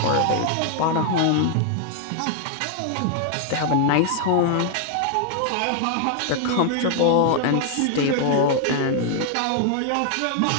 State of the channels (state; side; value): different; both; correlation 0.00